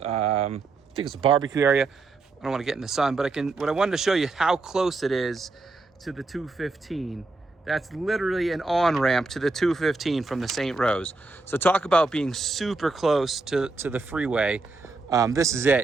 I think it's a barbecue area. I don't want to get in the sun, but what I wanted to show you how close it is to the 215. That's literally an on-ramp to the 215 from the St. Rose. So talk about being super close to the freeway. This is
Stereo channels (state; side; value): quieter; left; 3.5 dB